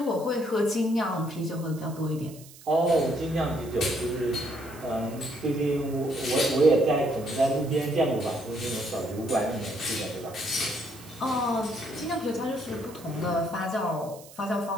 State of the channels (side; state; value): right; noise; hiss, 20 dB below the sound